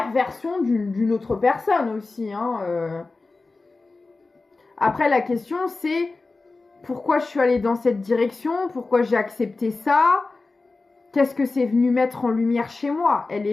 d'une autre personne aussi, hein. Après, la question, c'est pourquoi je suis allée dans cette direction, pourquoi j'ai accepté ça, qu'est-ce que c'est venu mettre en lumière chez moi. Elle est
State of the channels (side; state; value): right; quieter; 3.6 dB